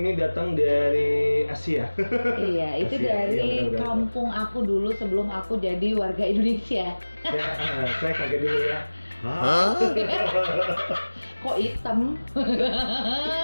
ini datang dari Asia. Iya, itu Asia. dari Iya, benar. kampung aku dulu sebelum aku jadi warga Indonesia. Saya kaget dulu ya. Hah? Kok hitam?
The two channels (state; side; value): inverted; both; correlation -1.00